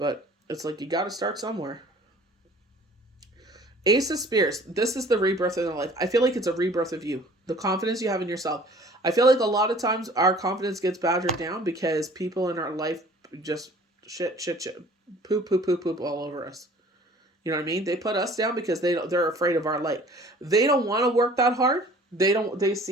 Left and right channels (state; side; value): normal; both; correlation 0.50